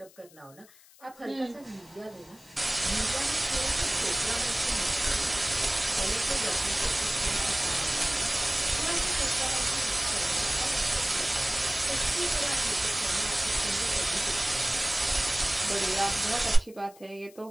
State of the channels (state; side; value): noise; left; hiss, 25 dB below the sound